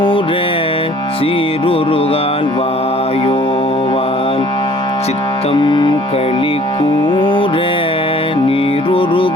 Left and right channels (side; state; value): both; normal; correlation 0.54